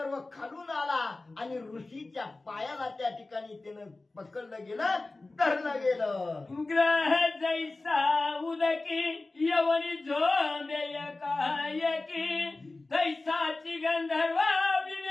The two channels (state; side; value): quieter; right; 3.2 dB